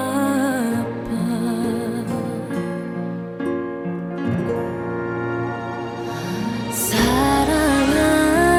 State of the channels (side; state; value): both; identical; correlation 1.00